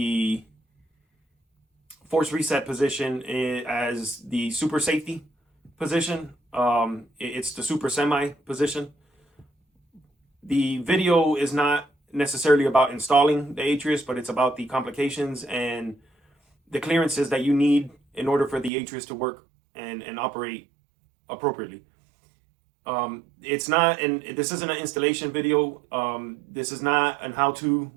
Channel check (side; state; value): left; drops out; at 18.7 s